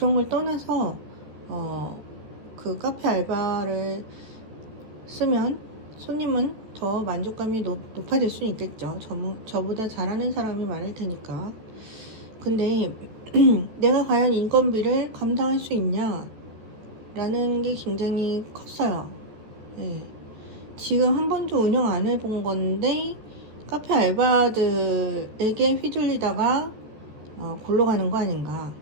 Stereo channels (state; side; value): late; left; 14 ms